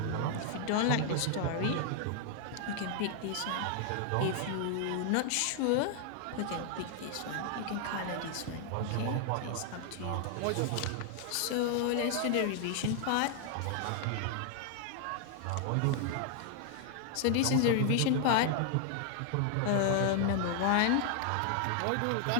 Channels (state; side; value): different; both; correlation 0.00